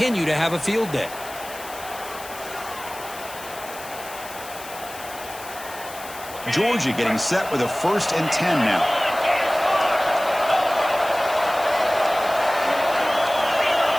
to have a field day. Georgia getting set with a 1st and 10 now.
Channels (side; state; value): left; noise; hiss, 15 dB below the sound